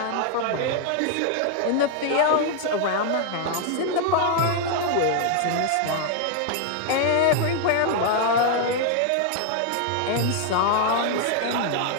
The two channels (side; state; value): both; different; correlation 0.00